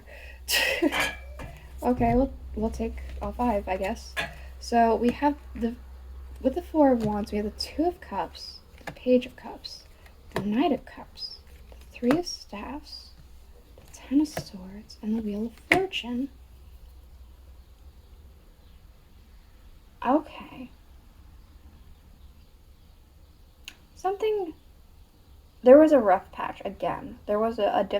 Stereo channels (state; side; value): identical; both; correlation 1.00